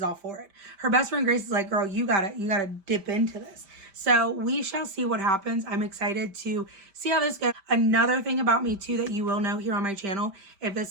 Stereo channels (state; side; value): late; left; 5.1 ms